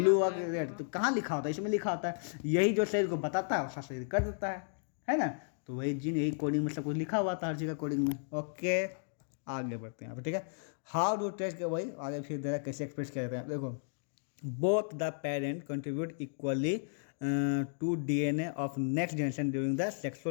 होगा कि रेड, तो कहाँ लिखा होता है? इसमें लिखा होता है। यही जो शरीर को बताता है वैसा शरीर कर देता है ना। तो वही जीन, यही कोडिंग में सब कुछ लिखा हुआ था हर चीज़ का कोडिंग में। ओके, आगे बढ़ते हैं यहाँ पर, ठीक है। हाउ डू टेस्ट के वही आगे फिर दे रहा है कैसे एक्सप्रेस किया जाता है। देखो both the parent contribute equally to DNA of next generation during the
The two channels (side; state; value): right; silent; digital silence